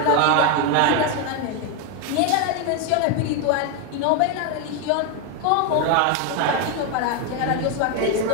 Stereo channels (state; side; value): different; both; correlation 0.01